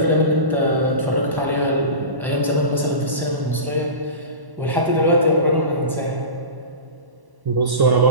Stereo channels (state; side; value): late; left; 1.1 ms